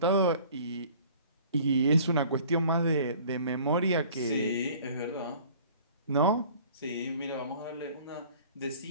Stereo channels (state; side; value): inverted; both; correlation -0.50